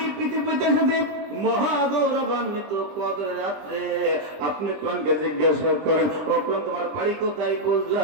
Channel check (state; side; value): late; left; 20 ms